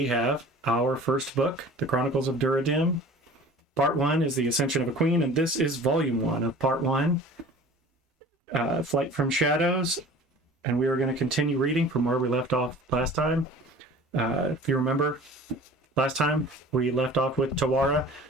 have our first book, The Chronicles of Duradim. Part 1 is The Ascension of a Queen, and this is Volume 1 of Part 1, Flight from Shadows. And we are going to continue reading from where we left off last time. If you remember, last time we left off with Tawara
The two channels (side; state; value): both; normal; correlation 0.44